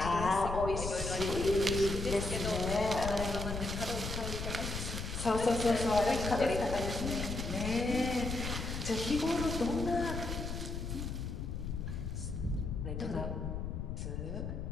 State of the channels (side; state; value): left; noise; rumble, 4 dB below the sound